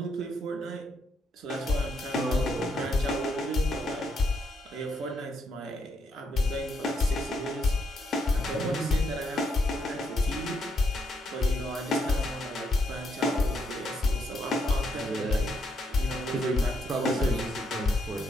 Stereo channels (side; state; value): both; normal; correlation 0.76